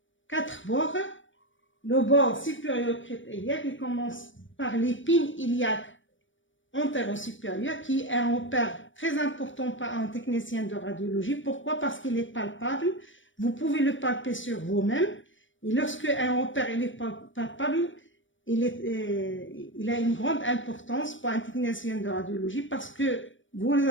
4 bords. Le bord supérieur crête iliaque, il commence par l'épine iliaque antéro-supérieur, qui est un repère très important pour un technicien de radiologie. Pourquoi? Parce qu'il est palpable. Vous pouvez le palper sur vous-même. Et lorsque un repère est palpable, il a une grande importance pour un technicien de radiologie parce que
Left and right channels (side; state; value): right; late; 0.56 ms